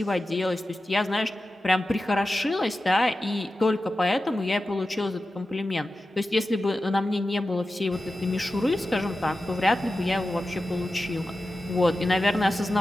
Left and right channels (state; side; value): normal; both; correlation 0.93